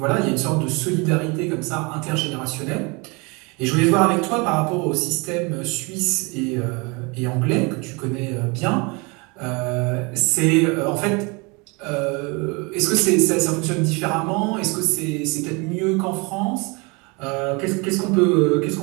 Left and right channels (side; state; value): left; quieter; 28.6 dB